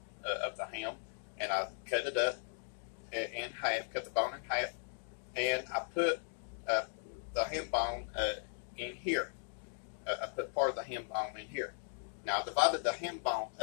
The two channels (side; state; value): right; silent; digital silence